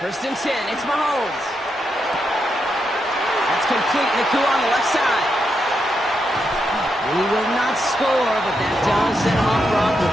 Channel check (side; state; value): both; normal; correlation 0.83